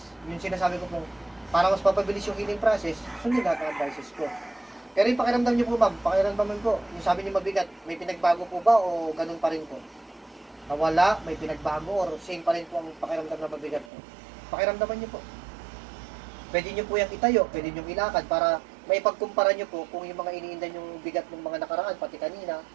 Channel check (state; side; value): drops out; left; at 13.9 s